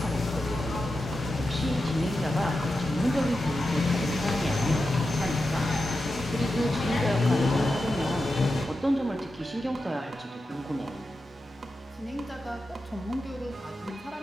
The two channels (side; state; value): both; normal; correlation 0.90